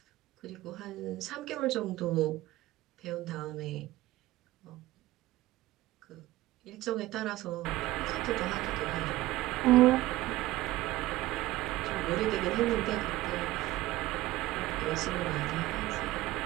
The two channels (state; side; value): quieter; left; 17.2 dB